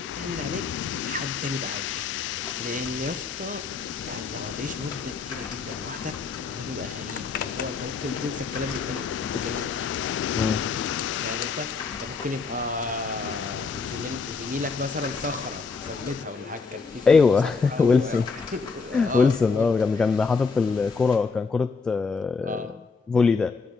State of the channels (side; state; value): right; quieter; 4.8 dB